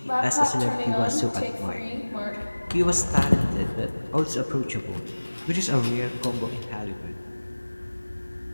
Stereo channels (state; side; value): inverted; both; correlation -1.00